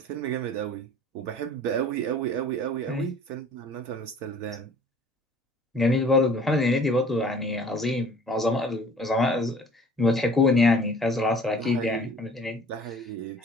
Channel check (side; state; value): both; normal; correlation 0.49